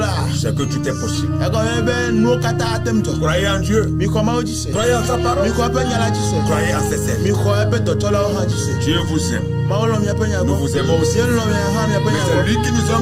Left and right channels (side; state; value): both; identical; correlation 1.00